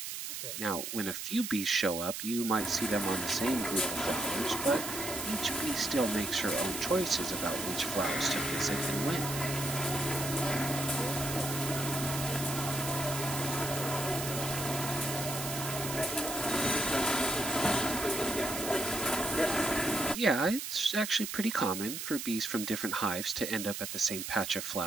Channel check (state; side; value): noise; right; hiss, 5 dB below the sound